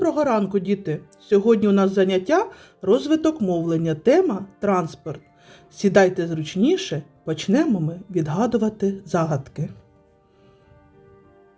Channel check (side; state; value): both; identical; correlation 1.00